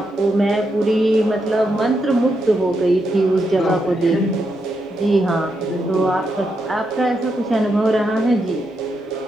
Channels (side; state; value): both; normal; correlation 0.82